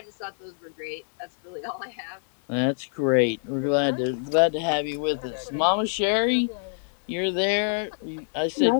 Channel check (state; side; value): silent; right; digital silence